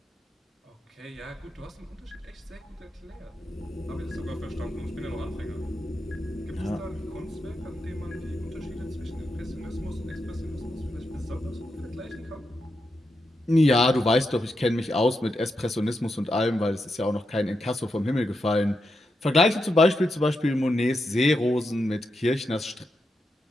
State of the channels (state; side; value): normal; both; correlation 0.85